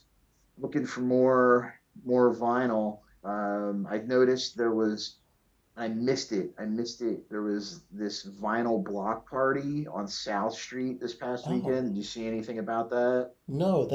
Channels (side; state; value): both; identical; correlation 1.00